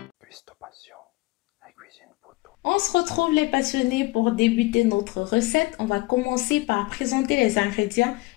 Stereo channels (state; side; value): quieter; right; 22.0 dB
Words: On se retrouve les passionnés pour débuter notre recette. On va commencer par présenter les ingrédients.